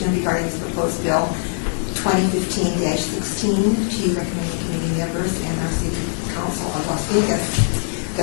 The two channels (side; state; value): right; silent; 65 dB below the other